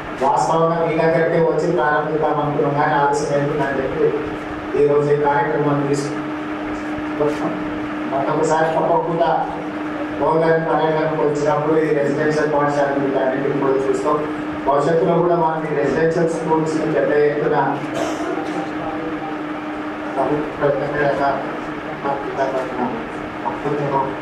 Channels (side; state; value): both; identical; correlation 1.00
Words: వాస్తవంగా మీ దగ్గరికి వచ్చి ప్రారంభిద్దాం అనుకున్నాం, కానీ ఆలస్యమైందని చెప్పి ఈరోజు ఈ కార్యక్రమాన్ని తీసుకుంటాం. మరొకసారి తప్పకుండా గవర్నమెంట్ పర్యటనకు వచ్చినప్పుడు ఈ రెసిడెన్షియల్ పాఠశాలను అన్నింటినీ కూడా చూస్తాం. భవిష్యత్తులో కూడా మనకి రెసిడెన్షియల్ స్కూల్స్ పెద్ద ఎత్తున